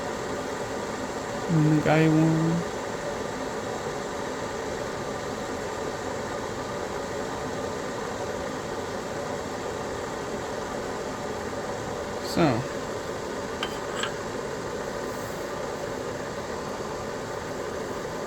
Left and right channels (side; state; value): both; identical; correlation 1.00